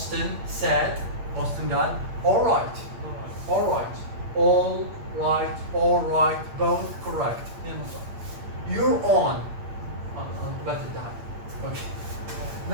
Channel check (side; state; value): left; late; 8.8 ms